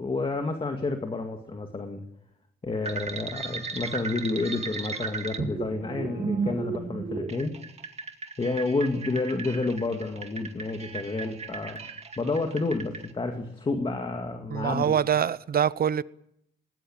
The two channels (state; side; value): normal; both; correlation 0.48